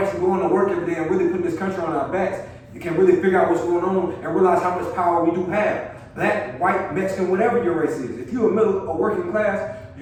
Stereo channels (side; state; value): both; identical; correlation 1.00